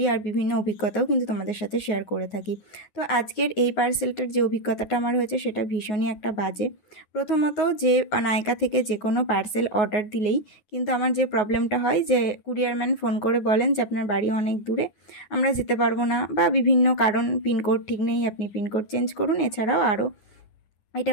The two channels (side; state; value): right; late; 9.4 ms